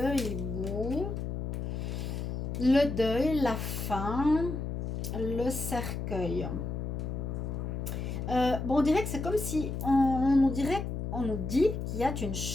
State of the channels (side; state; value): left; noise; hum, 4 dB below the sound